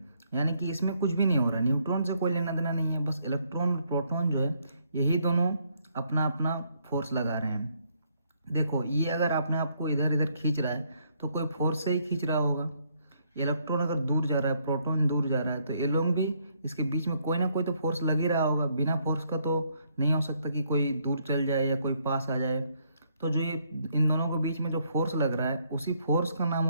यानी कि इसमें कुछ भी नहीं हो रहा, न्यूट्रॉन से कोई लेना देना नहीं है, बस इलेक्ट्रॉन और प्रोटॉन जो है यही दोनों अपना अपना फोर्स लगा रहे हैं। देखो, ये अगर आपने आपको इधर इधर खींच रहा है तो कोई फोर्स से ही खींच रहा होगा। इलेक्ट्रॉन अगर दूर जा रहा है, प्रोटॉन दूर जा रहा है, तो ये लोग भी, इसके बीच में कोई ना कोई तो फोर्स लग ही रहा होगा। बिना फोर्स का तो नहीं हो सकता कि कोई दूर चल जाए या कोई पास आ जाए। तो जो ये इन दोनों के बीच में जो फोर्स लग रहा है उसी फोर्स का नाम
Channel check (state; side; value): inverted; both; correlation -0.71